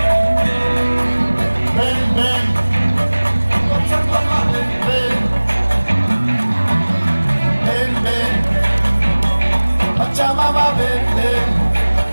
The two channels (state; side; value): inverted; both; correlation -1.00